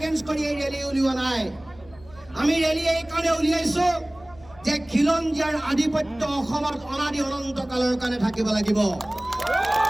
কৰি এই ৰেলী উলিওৱা নাই। আমি ৰেলী এইকাৰণে উলিয়াইছোঁ যে খিলঞ্জীয়াৰ আধিপত্য অসমত অনাদি অনন্তকালৰ কাৰণে থাকিব লাগিব।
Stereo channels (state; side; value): noise; left; hum, 24 dB below the sound